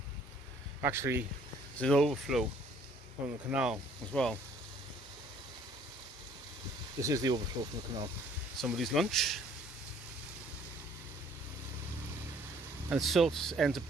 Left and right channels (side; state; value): both; normal; correlation 0.59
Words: Actually, there's an overflow from the canal as well. This is the overflow from the canal. Somebody's lunch. And silt ends